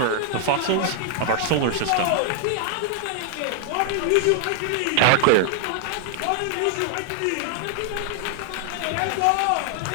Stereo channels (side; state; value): both; different; correlation 0.00